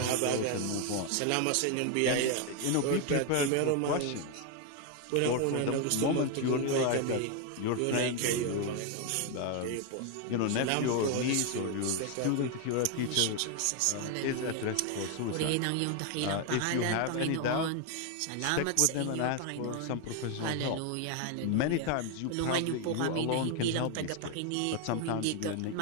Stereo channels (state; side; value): different; both; correlation 0.01